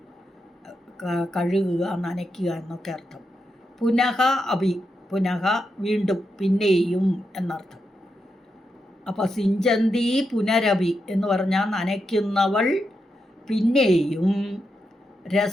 കഴുകുക, നനയ്ക്കുക എന്നൊക്കെ അർത്ഥം. പുനഃ അഭി, പുനഃ വീണ്ടും, പിന്നെയും എന്നർത്ഥം. അപ്പോൾ സിഞ്ചന്തി പുനരഭി എന്ന് പറഞ്ഞാൽ നനയ്ക്കുന്നവൾ പിന്നെയും.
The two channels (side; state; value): both; normal; correlation 0.85